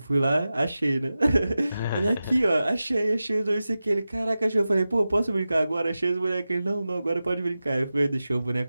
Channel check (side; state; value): both; inverted; correlation -0.94